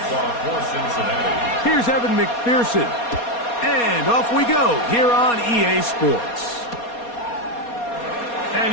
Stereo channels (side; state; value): right; late; 4.2 ms